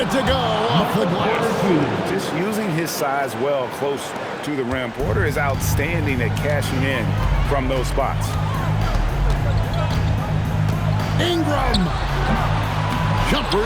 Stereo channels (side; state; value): both; identical; correlation 1.00